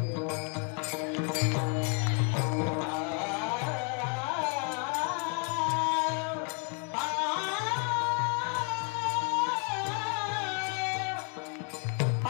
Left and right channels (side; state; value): right; quieter; 34.2 dB